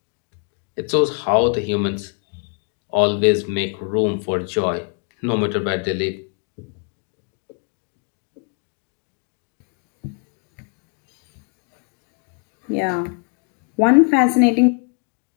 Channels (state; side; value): quieter; right; 37.7 dB